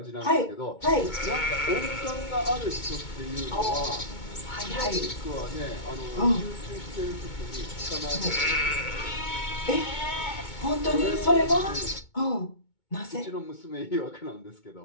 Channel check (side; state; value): right; late; 2.2 ms